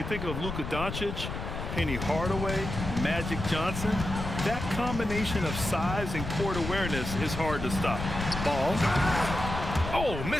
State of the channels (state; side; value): noise; left; rumble, 6 dB below the sound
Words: think of Luka Doncic, Penny Hardaway, Magic Johnson. That combination of size and court awareness is hard to stop. Ball. Oh,